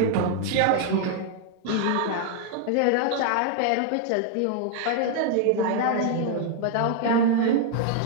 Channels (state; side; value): different; both; correlation 0.00